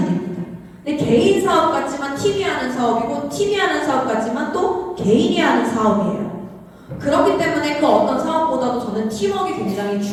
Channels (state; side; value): identical; both; correlation 1.00